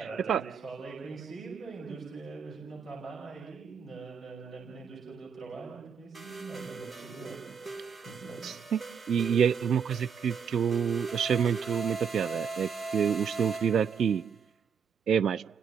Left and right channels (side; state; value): left; quieter; 6.8 dB